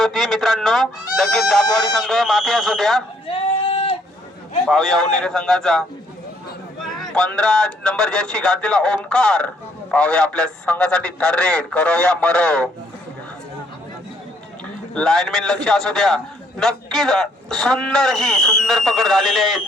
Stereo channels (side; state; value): both; normal; correlation 0.67